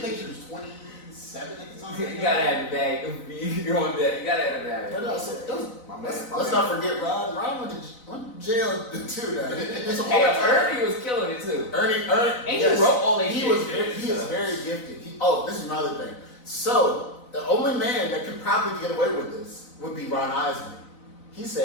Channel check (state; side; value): late; right; 4.0 ms